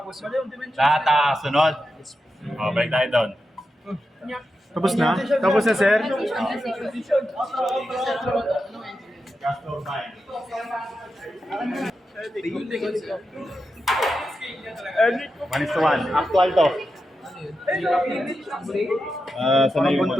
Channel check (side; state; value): both; normal; correlation 0.89